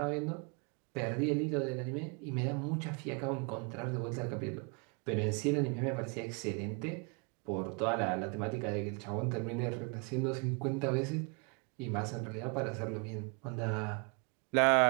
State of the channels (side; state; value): left; quieter; 33.5 dB